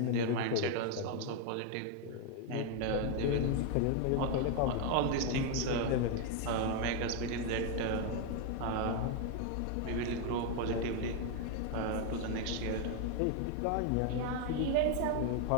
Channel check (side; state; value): both; different; correlation 0.01